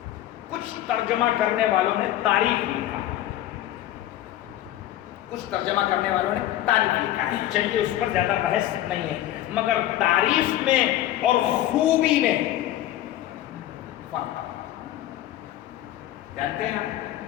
کچھ ترجمہ کرنے والوں نے تعریف لکھا، کچھ ترجمہ کرنے والوں نے تعریف لکھا ہے. چلیے اس پر زیادہ بحث نہیں ہے، مگر تعریف میں اور خوبی میں فرق جانتے ہیں آپ؟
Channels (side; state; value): right; quieter; 13.6 dB